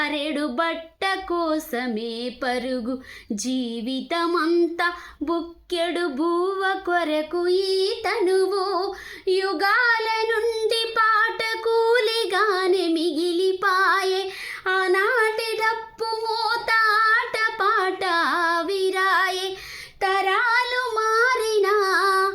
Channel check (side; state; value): both; identical; correlation 1.00